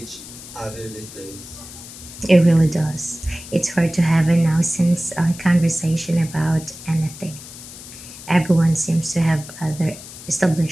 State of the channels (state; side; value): noise; left; hiss, 15 dB below the sound